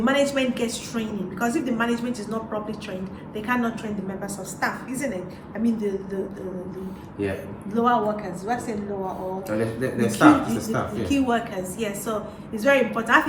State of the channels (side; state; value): both; identical; correlation 1.00